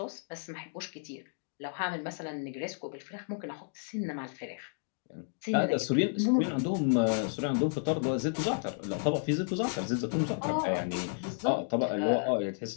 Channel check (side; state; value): right; silent; digital silence